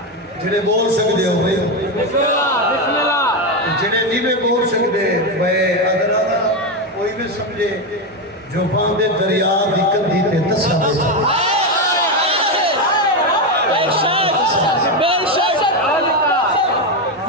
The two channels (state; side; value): normal; both; correlation 0.10